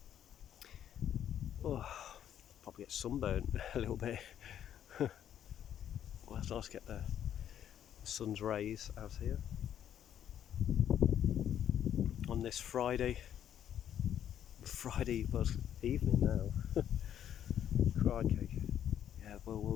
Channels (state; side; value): quieter; right; 10.1 dB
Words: Probably get sunburnt a little bit. Well, it's nice to get the sun's rays out here on this Friday. Well, it's evening now. Crikey. Yeah, well,